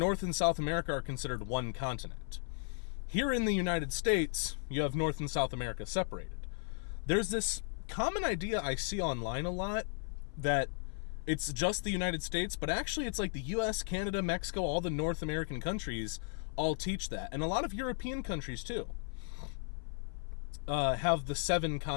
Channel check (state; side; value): silent; right; 54 dB below the other